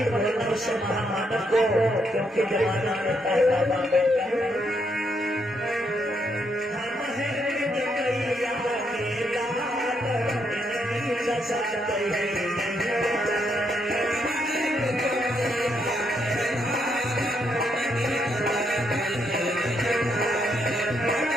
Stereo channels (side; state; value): both; normal; correlation 0.77